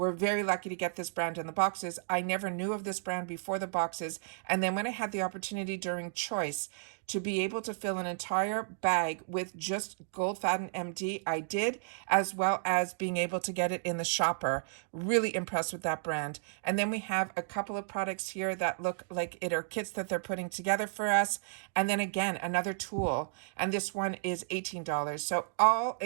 very lucky to get this brand in the boxes. I never knew of this brand before the boxes. And then when I had the opportunity during Choice to be able to fill an entire bag with just Gold Faden MD, I did, as well as being able to get it in the shopper. Really impressed with that brand. And then we have a couple of products here that look like it are kits that they're putting together for us. And then again, another tool. And this one is $18. So all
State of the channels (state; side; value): silent; left; digital silence